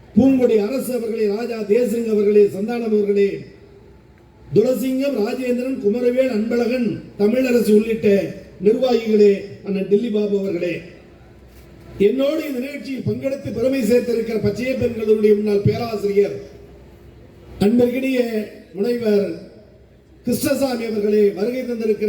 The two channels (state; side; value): identical; both; correlation 1.00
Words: பூங்கொடி அரசு அவர்களே, ராஜா தேசிங் அவர்களே, சந்தானம் அவர்களே, துளசிங்கம், ராஜேந்திரன், குமரவேல், அன்பழகன், தமிழரசு உள்ளிட்ட நிர்வாகிகளே, அண்ணன் டில்லி பாபு அவர்களே, என்னோடு இந்த நிகழ்ச்சியில் பங்கெடுத்து பெருமை சேர்த்திருக்கிற பச்சைய பெண்களுடைய முன்னாள் பேராசிரியர் அன்பிற்கினிய முனைவர் கிருஷ்ணசாமி அவர்களே, வருகை